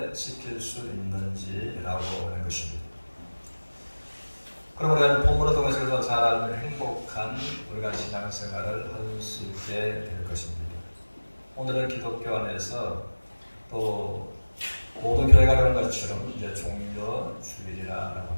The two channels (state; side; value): inverted; both; correlation -1.00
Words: 지킬 수 있는지라고 하는 것입니다. 그럼 우리가 본문을 통해서 잘 알면 행복한 우리가 신앙생활을 할 수 있게 될 것입니다. 오늘은 기독교 안에서 또 모든 교회가 그런 것처럼 이제 종려 주일이라고